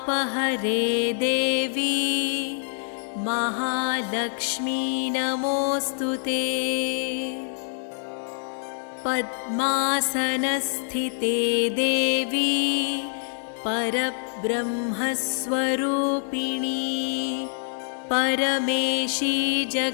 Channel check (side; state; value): right; silent; digital silence